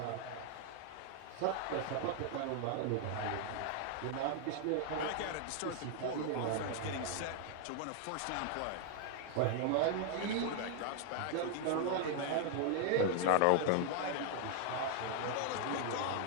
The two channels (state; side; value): different; both; correlation 0.00